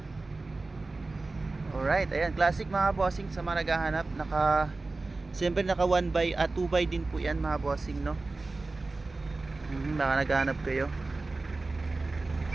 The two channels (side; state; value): left; quieter; 3.4 dB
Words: Alright, ayan, classic mga bossing. Sa mga naghahanap, siyempre naka 1x at 2x din po yan mga bossing, no? Baka naghahanap kayo.